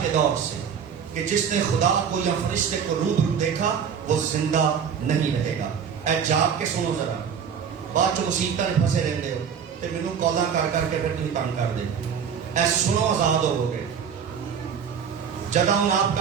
کے دور سے کہ جس نے خدا کو یا فرشتے کو روبرو دیکھا وہ زندہ نہیں رہے گا. اے جاگ کے سنو ذرا بعد جو مصیبتیں نے پھنسے رہتے ہو تو مینوں کالاں کر کر کے پھر تم تنگ کر دے. اے سنو آزاد ہو گے. جدعون آپ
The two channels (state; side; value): quieter; left; 7.3 dB